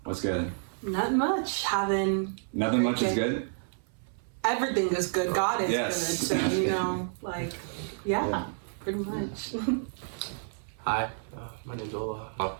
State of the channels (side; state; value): left; silent; 55 dB below the other